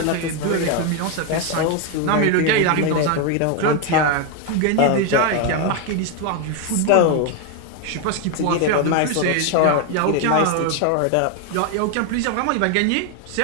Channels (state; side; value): different; both; correlation 0.01